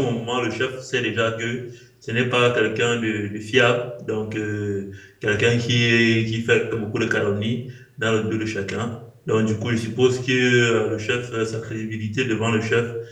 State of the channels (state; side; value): identical; both; correlation 1.00